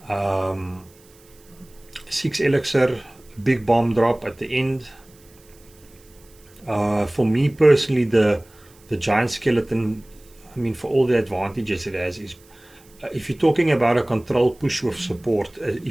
6 elixir, big bomb drop at the end. For me personally, the Giant Skeleton, I mean, for all the advantages it has, is if you're talking about a control push with support,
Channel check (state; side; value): noise; right; hiss, 28 dB below the sound